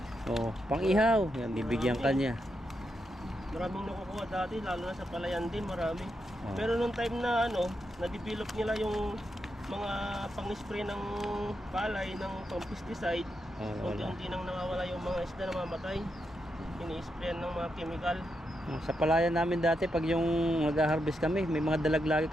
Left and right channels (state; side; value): normal; both; correlation 0.84